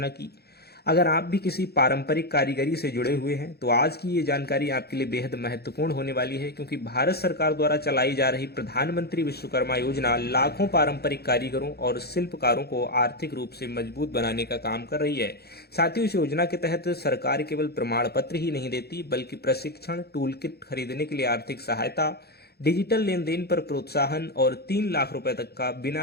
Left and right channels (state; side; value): late; right; 0.46 ms